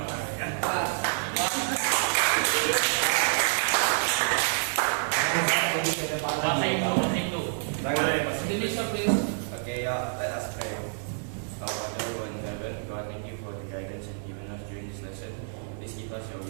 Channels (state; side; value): silent; left; digital silence